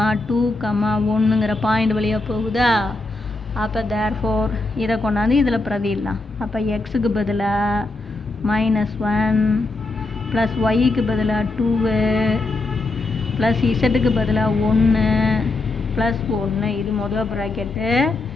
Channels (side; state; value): right; quieter; 3.2 dB